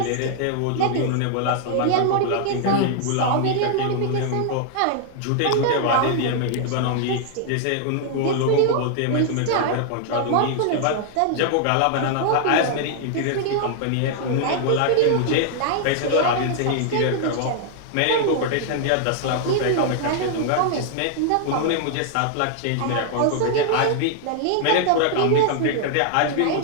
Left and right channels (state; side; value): different; both; correlation -0.01